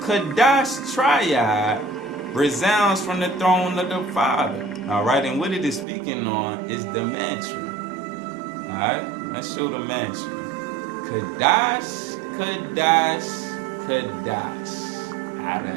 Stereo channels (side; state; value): left; drops out; at 5.9 s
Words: Kadash triad resounds from the throne of the Father. All right, and what it is speaking on is the mantra. All right, let's show the mantra. Kadash, Kadash, Kadash,